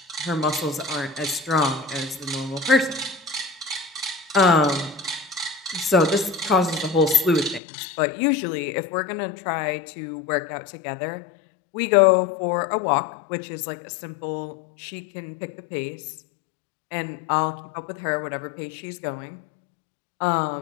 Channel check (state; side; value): drops out; right; at 7.6 s